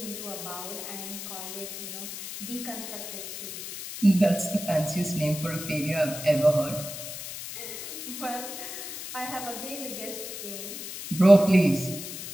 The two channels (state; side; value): noise; left; hiss, 8 dB below the sound